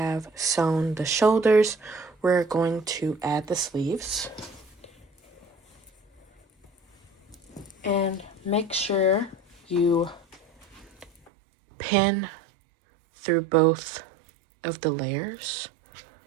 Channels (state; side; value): drops out; left; at 11.3 s